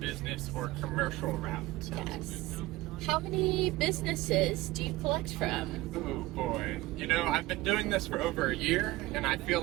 or commercial route. Yes. How many businesses do you collect from? Oh boy. I've been doing this for over a year, and I feel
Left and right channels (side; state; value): left; quieter; 18.9 dB